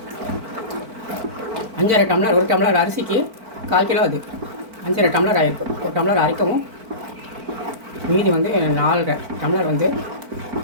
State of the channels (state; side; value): late; left; 4.5 ms